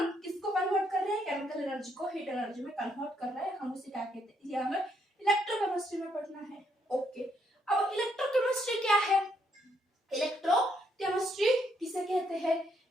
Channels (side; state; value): both; normal; correlation 0.73